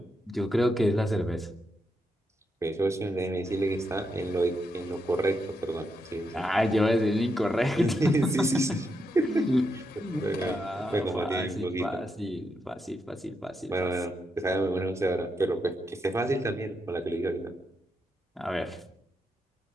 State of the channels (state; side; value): normal; both; correlation 0.82